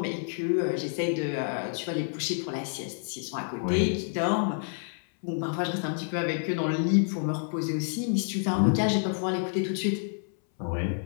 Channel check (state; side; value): silent; right; 59 dB below the other